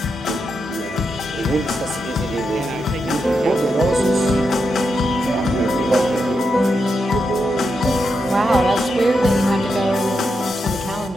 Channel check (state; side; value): normal; both; correlation 0.85